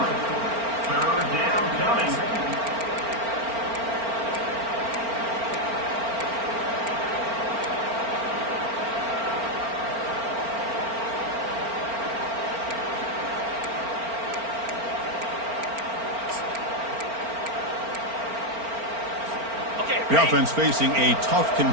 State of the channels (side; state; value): left; late; 4.4 ms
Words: Third down coming. The offense facing a tough